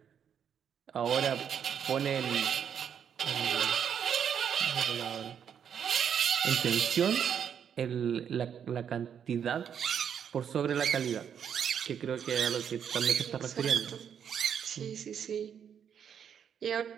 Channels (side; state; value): left; quieter; 8.2 dB